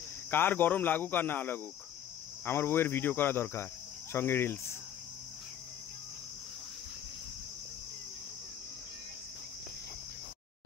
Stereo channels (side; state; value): right; quieter; 10.0 dB